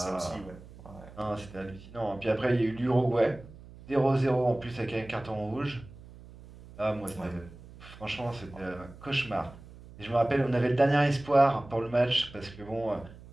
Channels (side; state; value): right; noise; hum, 19 dB below the sound